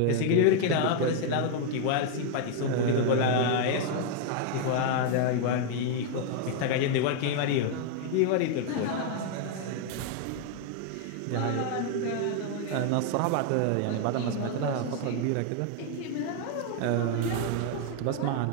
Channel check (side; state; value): both; different; correlation 0.00